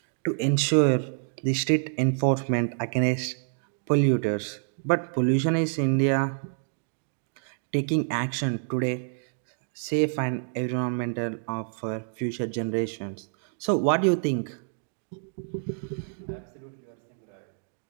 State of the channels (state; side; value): silent; left; digital silence